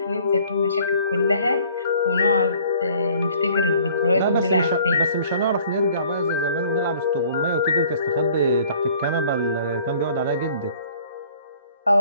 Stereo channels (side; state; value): both; inverted; correlation -0.55